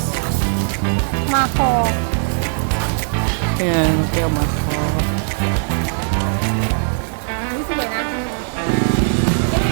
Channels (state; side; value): silent; left; digital silence